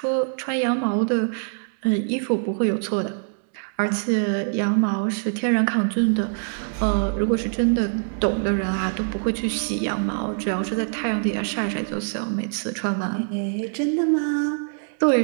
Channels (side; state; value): left; silent; digital silence